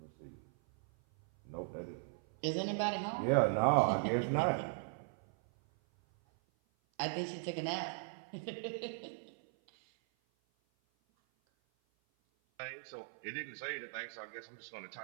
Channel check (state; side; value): silent; left; 52 dB below the other